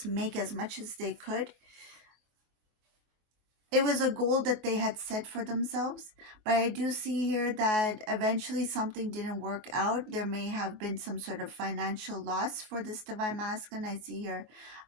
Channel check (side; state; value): left; late; 23 ms